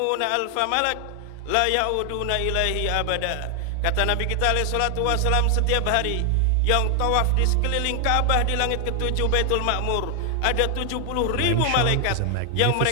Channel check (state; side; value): different; both; correlation 0.00